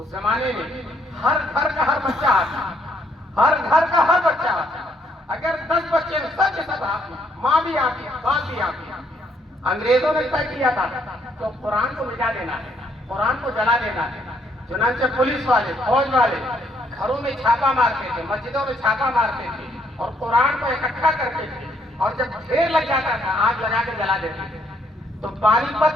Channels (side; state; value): both; normal; correlation 0.70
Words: زمانے میں ہر گھر کا ہر بچہ آتا. اگر 10 بچے سب کے سب آتے، ماں بھی آتی، باپ بھی آتی. انگریزوں نے طے کیا تھا تو قرآن کو مٹا دینا ہے، قرآن کو جلا دینا ہے. چنانچہ پولیس والے، فوج والے گھروں میں چھاپا مارتے تھے، مسجدوں میں چھاپا مارتے تھے اور قرآن کو اکٹھا کرتے تھے. اور جب ڈھیر لگ جاتا تھا آگ لگا کے جلا دیتے تھے. تو پانی پت